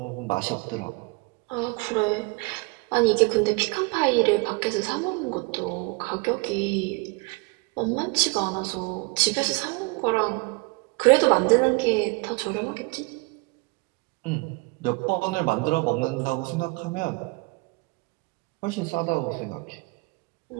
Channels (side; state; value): left; quieter; 27.7 dB